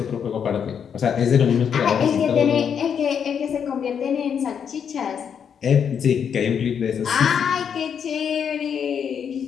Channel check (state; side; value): quieter; right; 7.6 dB